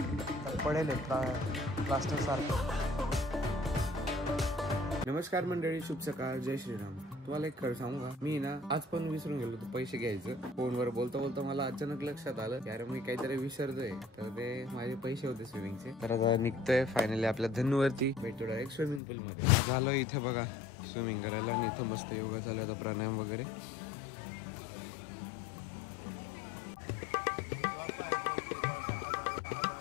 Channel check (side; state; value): right; drops out; at 19.0 s